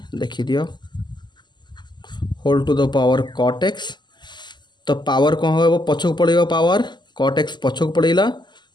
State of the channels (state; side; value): late; right; 0.21 ms